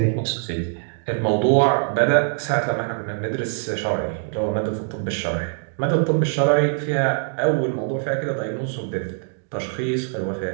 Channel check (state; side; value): silent; left; digital silence